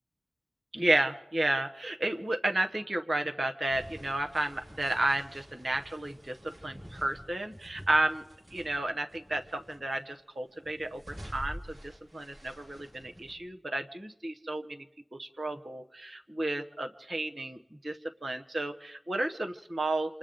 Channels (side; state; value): both; normal; correlation 0.96